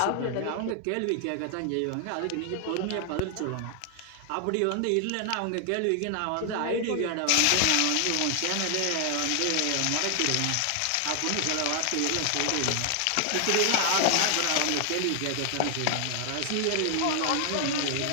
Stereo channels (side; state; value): both; different; correlation 0.00